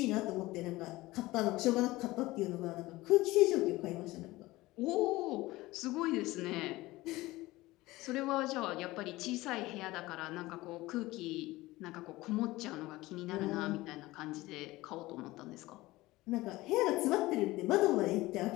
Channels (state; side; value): quieter; right; 19.1 dB